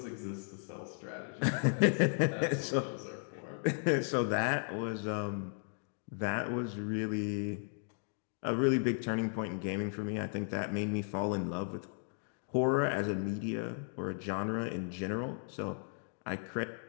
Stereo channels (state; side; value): silent; right; 54 dB below the other